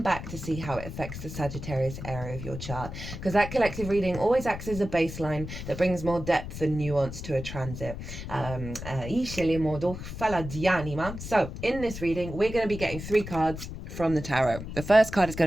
back to see how it affects the Sagittarius area of your chart, because that collective reading always acts as a baseline that brings more depth and nuance to a transit. So in this reading, we're going to be getting 3 cards from the tarot. The first card is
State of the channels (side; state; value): left; noise; rumble, 9 dB below the sound